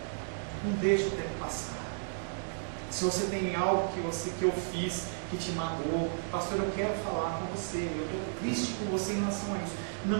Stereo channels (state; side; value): silent; left; digital silence